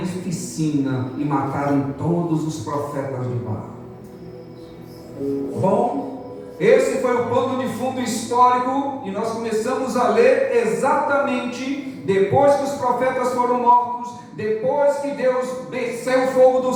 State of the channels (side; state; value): both; identical; correlation 1.00